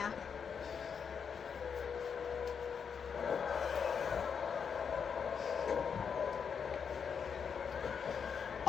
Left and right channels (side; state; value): right; quieter; 6.7 dB